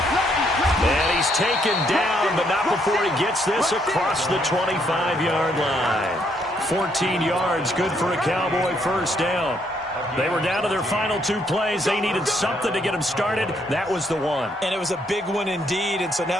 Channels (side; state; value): both; normal; correlation 0.72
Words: And he's taken down, but not before he gets this across the 25-yard line. 14 yards, good for a Cowboy first down. They were down to their final 2 plays. They needed something to get them started. That was the one. And it was a big one indeed, and so